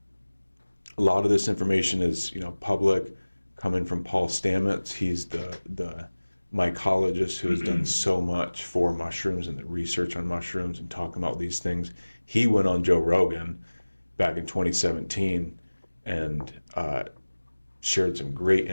A lot of this information is, public, coming from Paul Stamets. He's the mycologist who has done so much for mushrooms and the research on mushrooms and talking about these things. He went on Joe Rogan back in 2017 and shared some great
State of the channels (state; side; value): inverted; both; correlation -1.00